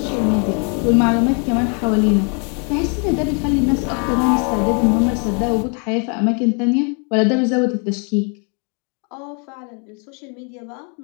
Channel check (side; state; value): right; quieter; 38.0 dB